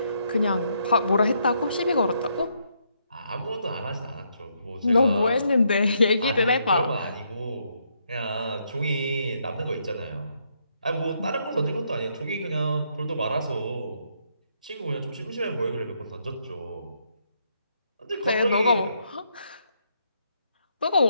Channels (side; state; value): both; inverted; correlation -0.75